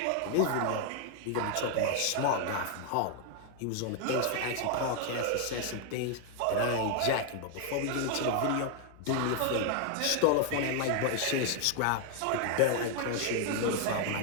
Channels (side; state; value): both; different; correlation 0.00